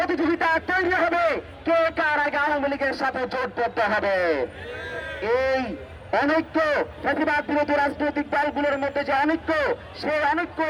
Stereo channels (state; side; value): identical; both; correlation 1.00